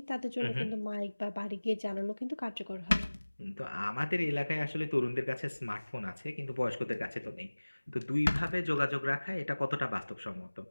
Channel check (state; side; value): inverted; both; correlation -1.00